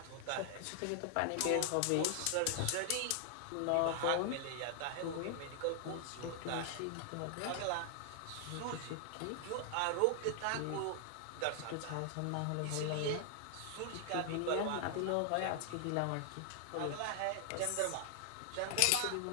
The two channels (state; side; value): different; both; correlation 0.00